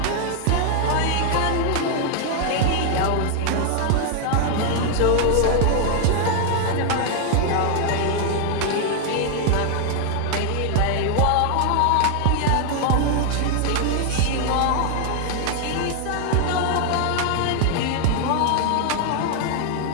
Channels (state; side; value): different; both; correlation 0.00